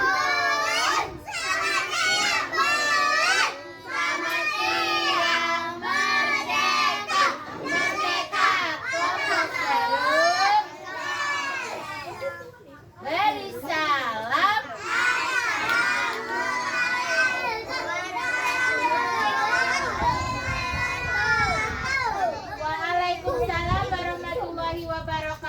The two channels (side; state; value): both; identical; correlation 1.00